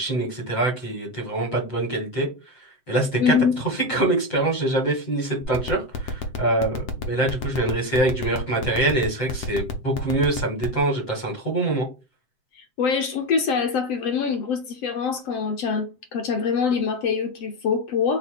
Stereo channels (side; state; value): right; late; 7.8 ms